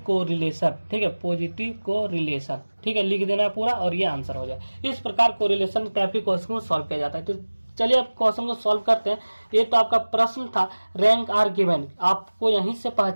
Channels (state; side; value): inverted; both; correlation -1.00